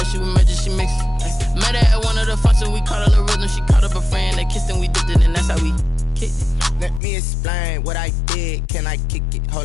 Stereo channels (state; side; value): drops out; right; at 7.0 s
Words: she was magic, she mixed. Ay, met her at one of the functions, we caught a little rhythm, she caught up a friend, they kissed and we dipped it, and that's how we kicked it. Let me explain what I did, can I kick it?